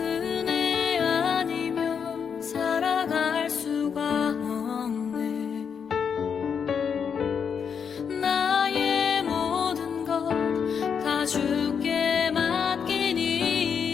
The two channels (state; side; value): quieter; right; 6.9 dB